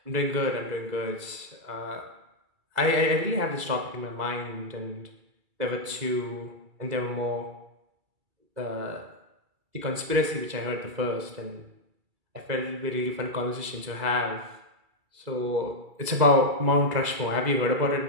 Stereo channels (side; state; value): left; late; 2.3 ms